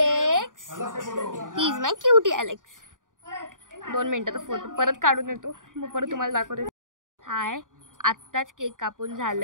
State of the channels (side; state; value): left; late; 0.88 ms